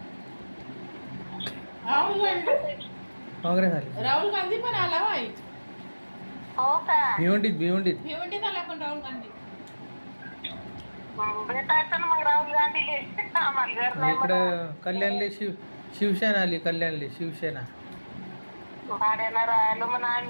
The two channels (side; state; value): both; inverted; correlation -1.00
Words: काँग्रेस आली राहुल गांधी पण आला भाई हो का भिवंडीत भिवंडीत आला पण राहुल गांधी भेटायचं ना मग राहुल गांधीले आम्हाला घर नाही इकडं कल्याणले शिवसेना आली शिवसेना भाड्यानं राहिलो म्हणा